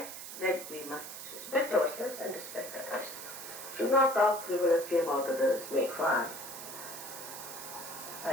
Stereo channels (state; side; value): noise; right; hiss, 10 dB below the sound